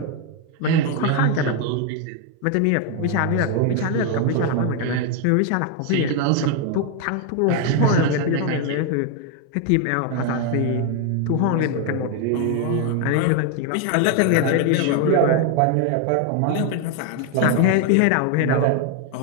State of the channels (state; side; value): different; both; correlation 0.01